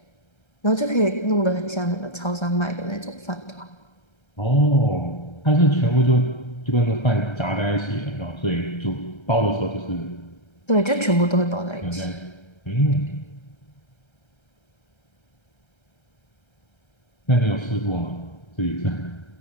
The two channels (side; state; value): right; late; 1.3 ms